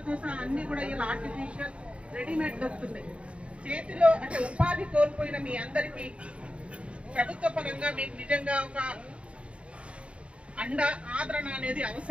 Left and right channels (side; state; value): left; late; 0.060 ms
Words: సహా అన్ని కూడా ఇలా ఆర్టిఫిషియల్ రెడీమేడ్ దొరుకుతున్నాయి. చేతిలో అంటే ఉపాధి కోల్పోయిన మీ అందరికీ ప్రభుత్వ పరంగా మీకు నిజంగా ఒక ఆదరణ అనేది